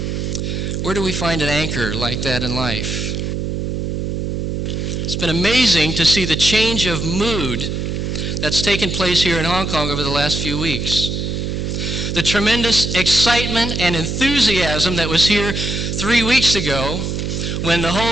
Where do we find an anchor like that in life? It's been amazing to see the change of mood that's taken place here in Hong Kong over the last few weeks. The tremendous excitement and enthusiasm that was here 3 weeks ago when the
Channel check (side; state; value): right; noise; hum, 2 dB below the sound